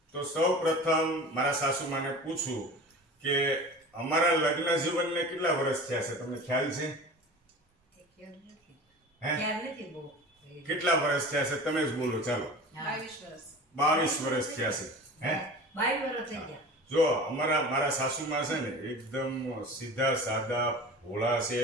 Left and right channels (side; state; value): both; normal; correlation 0.36